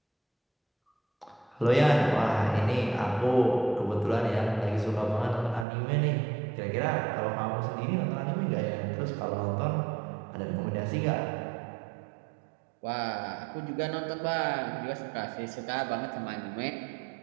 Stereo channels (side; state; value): left; drops out; at 5.7 s